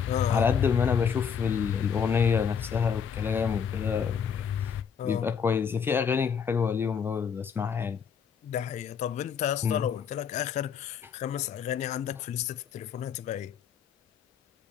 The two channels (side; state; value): right; quieter; 7.1 dB